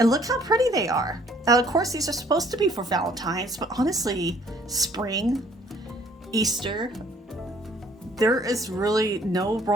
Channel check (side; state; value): both; normal; correlation 0.59